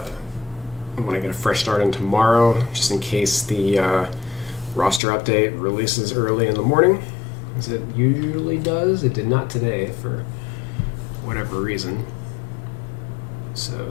I want to get a fresh start in tomorrow, just in case the roster update releases early in the morning, as it usually does. It did not today for whatever reason. So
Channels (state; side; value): drops out; right; at 5.0 s